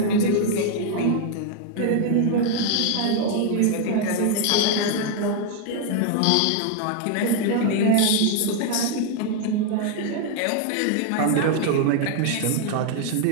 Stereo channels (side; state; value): both; different; correlation 0.00